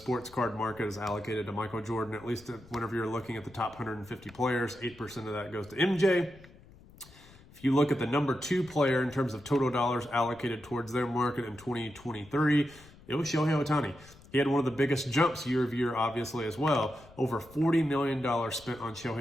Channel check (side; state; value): left; noise; rumble, 23 dB below the sound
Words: card market is allocated to Michael Jordan, at least whenever you're looking at the top 150 players. 8% of that goes to MJ. If you look at the number 2 player in terms of total dollars allocated towards their market in 2023, it was Shohei Ohtani. He had one of the biggest jumps year over year, obviously, as well. Over $40 million spent on